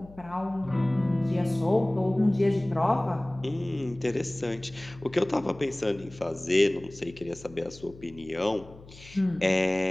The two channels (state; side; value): noise; left; hum, 20 dB below the sound